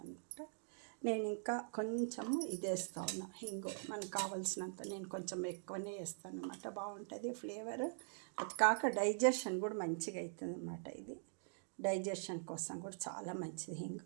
అనమాట. నేను ఇంకా కొంచెము ఇది వేస్తా ఉన్నా, హింగు మనకు కావాల్సినంత. నేను కొంచెం ఎక్కువనే వేస్తాను అనమాట, బాగుంటుంది ఫ్లేవర్. అది కాక డైజెషన్ కూడా మంచిగా అవుతుంది అనమాట. ఇది డైజెషన్ కోసం కూడా చాలా మంచిది హింగు.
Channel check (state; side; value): silent; left; digital silence